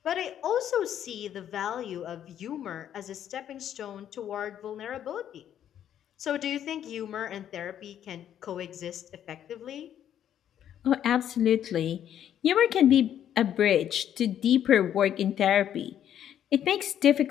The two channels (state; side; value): quieter; right; 10.2 dB